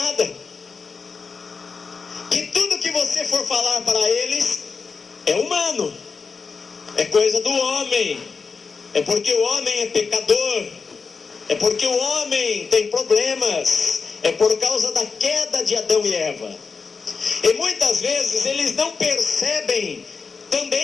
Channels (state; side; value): quieter; right; 5.0 dB